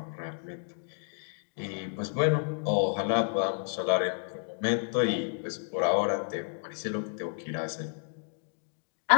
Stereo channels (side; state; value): right; silent; digital silence